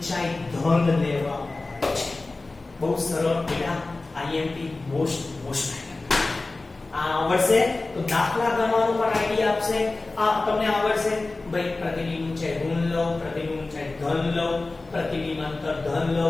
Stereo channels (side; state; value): right; quieter; 3.3 dB